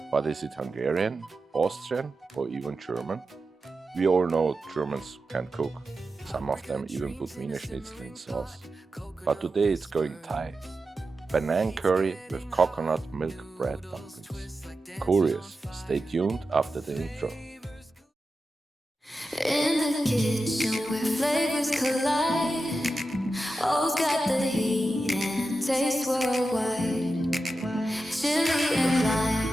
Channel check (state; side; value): normal; both; correlation 0.91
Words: but is it Hungarian, Austrian, or even German? We all know Germans can cook. Some of them even put Wiener Schnitzel in sauce. But today it's going Thai. Panang curry with coconut milk bread dumplings. Curious? Stay tuned after the intro. In the kitchen where flavors collide, all's got the heat and taste worldwide. Chili and